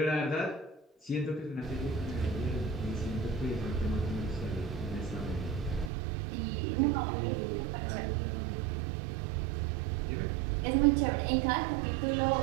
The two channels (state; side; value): drops out; left; at 5.9 s